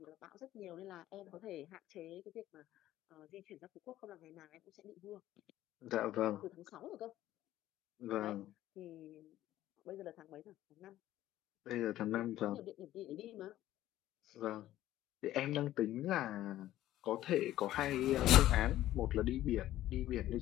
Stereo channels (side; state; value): right; quieter; 14.0 dB